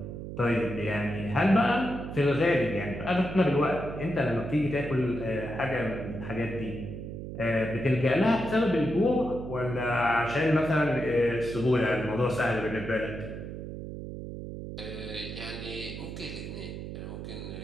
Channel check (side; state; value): right; noise; hum, 8 dB below the sound